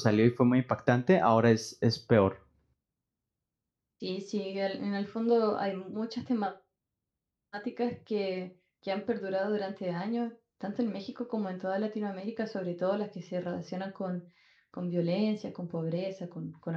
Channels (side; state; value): both; identical; correlation 1.00